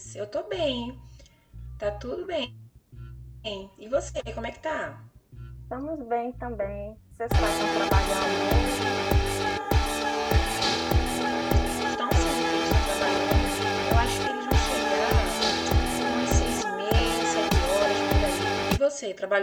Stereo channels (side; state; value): both; identical; correlation 1.00